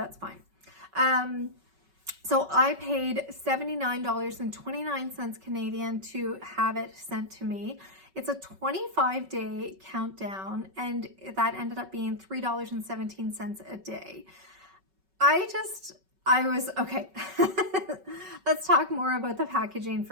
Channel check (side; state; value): left; late; 5.3 ms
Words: fine. So I paid $79.29 Canadian to have it sent to me. It's a 25-day countdown, and that ended up being $3.17 a day. I was, okay, let's talk more about the packaging